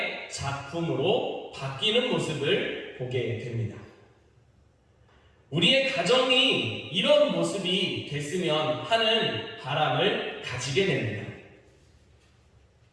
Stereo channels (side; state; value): both; identical; correlation 1.00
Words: 작품으로 바뀌는 모습을 보게 됩니다. 우리의 가정이 이런 모습이 됐으면 하는 바람을 가지게 됩니다.